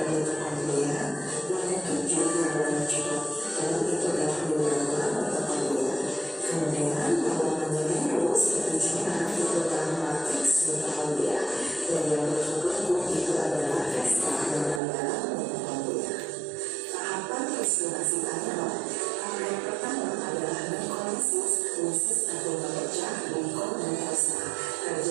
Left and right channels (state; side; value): drops out; left; at 14.8 s